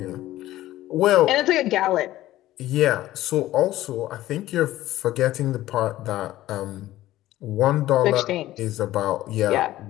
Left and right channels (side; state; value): right; quieter; 15.2 dB